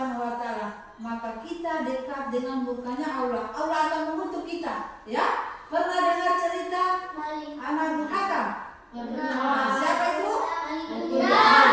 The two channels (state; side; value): identical; both; correlation 1.00